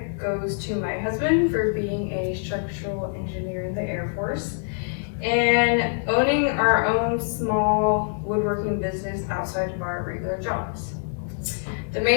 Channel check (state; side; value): silent; right; digital silence